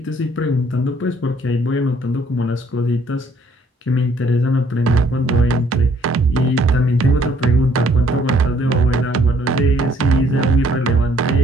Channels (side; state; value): both; normal; correlation 0.63